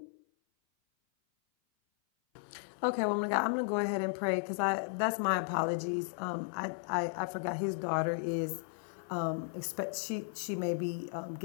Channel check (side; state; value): right; silent; 55 dB below the other